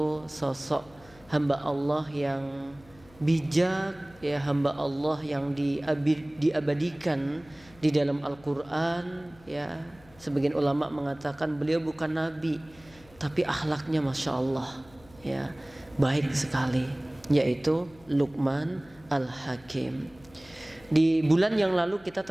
sosok hamba Allah yang bijak, ya, hamba Allah yang diabadikan di dalam Al-Quran, ya. Sebagian ulama mengatakan beliau bukan nabi, tapi akhlaknya masya Allah, ya, baik sekali, yaitu Luqman Al-Hakim. Di bulan yang lalu kita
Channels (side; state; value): left; noise; hum, 25 dB below the sound